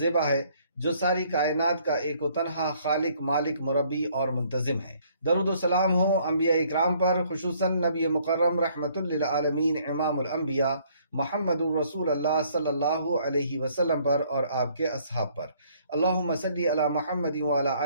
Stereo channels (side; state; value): both; inverted; correlation -0.63